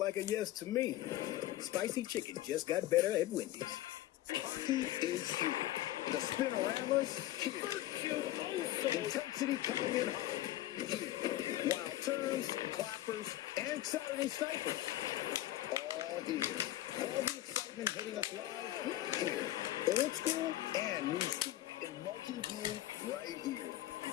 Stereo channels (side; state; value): right; quieter; 14.6 dB